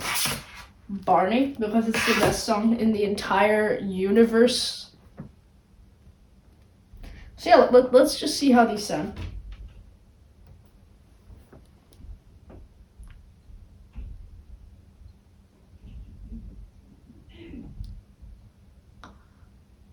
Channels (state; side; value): identical; both; correlation 1.00